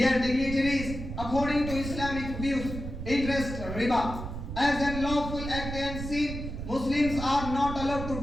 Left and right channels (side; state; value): right; noise; rumble, 7 dB below the sound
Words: dignitaries, according to Islamic views, interest riba as a lawful act and sin, Muslims are not allowed to